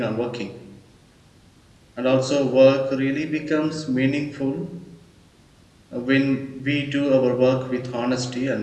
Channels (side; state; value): both; identical; correlation 1.00